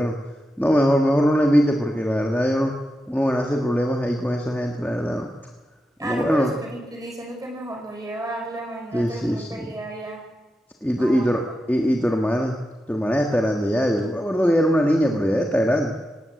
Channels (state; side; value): normal; both; correlation 0.89